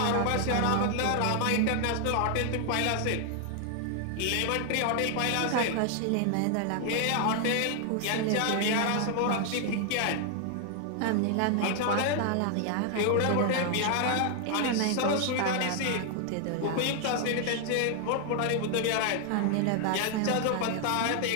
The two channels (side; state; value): both; different; correlation 0.00